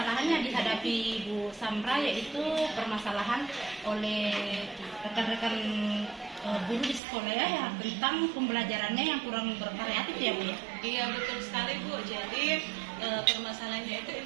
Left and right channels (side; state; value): left; drops out; at 7.0 s